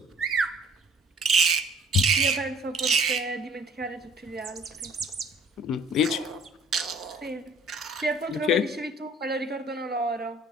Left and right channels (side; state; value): both; normal; correlation 0.54